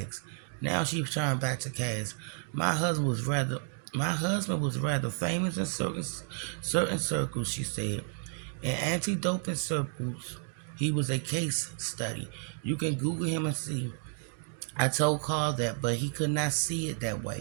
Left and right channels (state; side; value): silent; left; 57 dB below the other